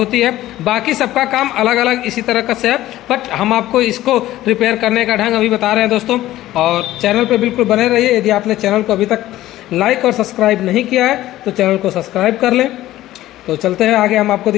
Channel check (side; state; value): right; quieter; 15.0 dB